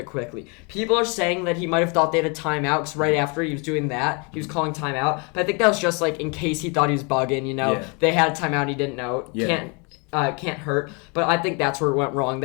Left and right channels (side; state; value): right; quieter; 32.8 dB